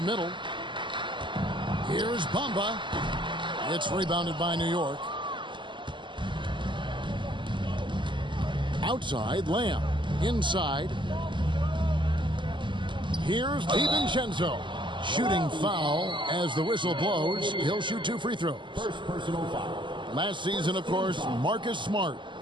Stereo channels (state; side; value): late; left; 0.24 ms